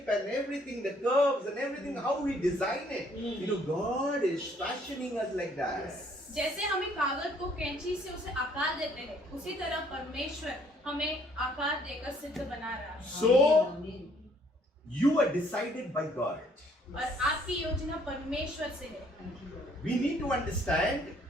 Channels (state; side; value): normal; both; correlation 0.63